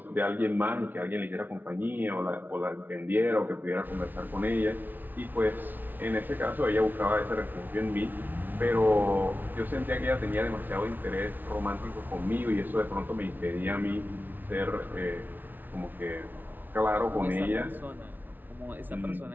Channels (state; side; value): late; left; 0.087 ms